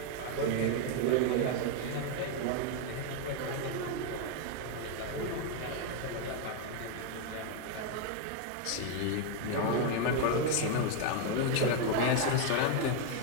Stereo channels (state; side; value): different; both; correlation 0.01